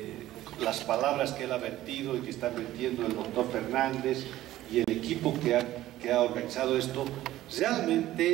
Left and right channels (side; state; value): left; quieter; 14.7 dB